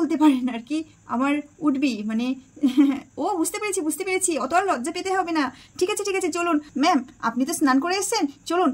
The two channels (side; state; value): both; identical; correlation 1.00